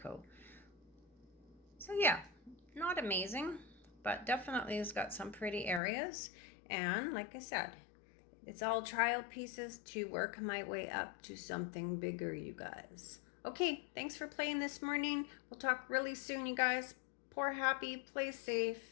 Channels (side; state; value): right; drops out; at 5.8 s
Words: So yeah, not amazing, but definitely has got some pretty areas. And like I said, it's all trial pieces to work my way up to something bigger, you guys. Okay, thanks for playing this morning. We'll talk really soon, you guys. Pour happy, play